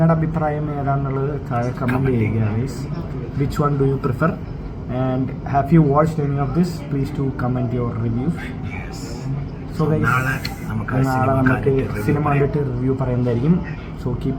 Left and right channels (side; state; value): both; identical; correlation 1.00